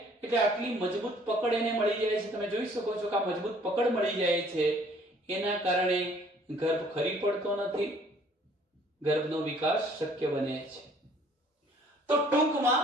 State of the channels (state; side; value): normal; both; correlation 0.58